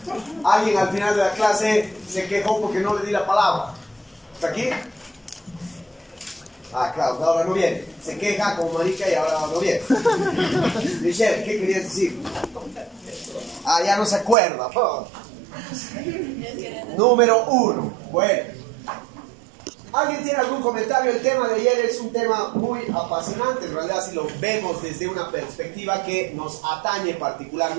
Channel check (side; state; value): left; drops out; at 14.4 s